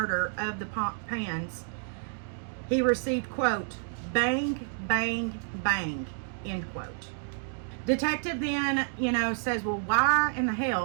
of the Pans, he received, quote, bang, bang, bang, end quote. Detective then, says, well, why in the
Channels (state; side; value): silent; left; digital silence